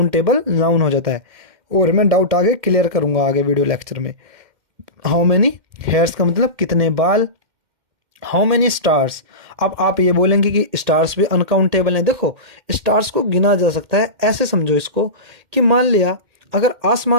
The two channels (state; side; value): late; left; 2.1 ms